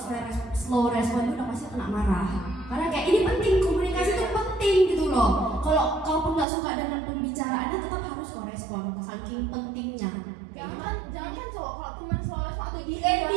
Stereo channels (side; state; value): left; drops out; at 6.5 s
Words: slow respon itu udah pasti kena marah. Karena kayak ini penting, komunikasi itu penting gitu loh. Kalau kau pun nggak suka dengan pembicaraannya tetap harus kau respon, saking pentingnya. Jangan cowok kalau teman selalu atau di ND